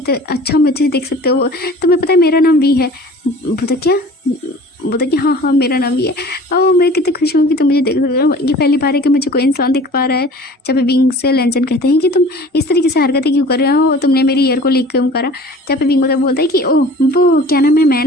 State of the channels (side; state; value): both; normal; correlation 0.44